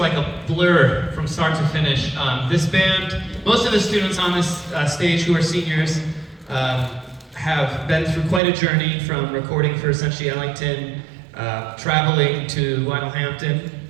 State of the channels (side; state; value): left; drops out; at 8.4 s